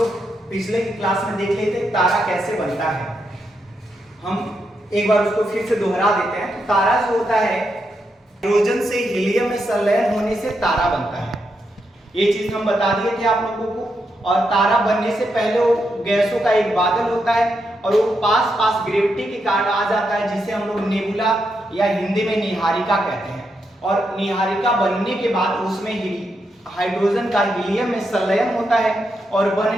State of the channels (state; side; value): normal; both; correlation 0.82